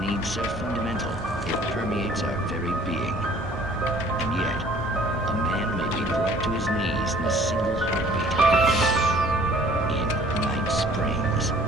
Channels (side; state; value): both; normal; correlation 0.54